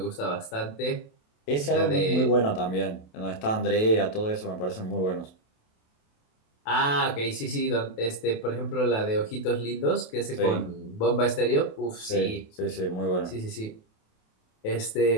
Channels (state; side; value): late; right; 28 ms